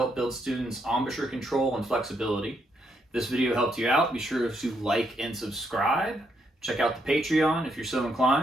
build students' embouchure control and flexibility. If this video helped you out, be sure to like and subscribe. Check out the Patreon if you're so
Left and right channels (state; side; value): normal; both; correlation 0.76